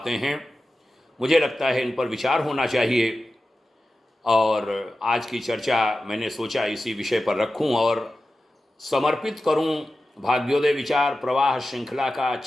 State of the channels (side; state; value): both; normal; correlation 0.93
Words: हैं। मुझे लगता है इन पर विचार होना चाहिए और आज की चर्चा मैंने सोचा इसी विषय पर रखूं और समर्पित करूं भाग्योदय विचार प्रवाह श्रृंखला का